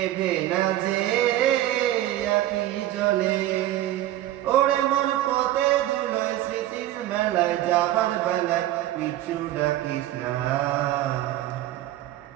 না যে আকি জলে। ওরে মন পথে ধুলোয় স্মৃতির মেলায় যাবার বেলায় পিছু ডাকিস না।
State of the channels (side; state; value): left; quieter; 14.1 dB